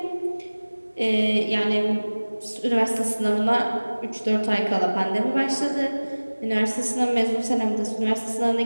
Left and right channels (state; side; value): inverted; both; correlation -1.00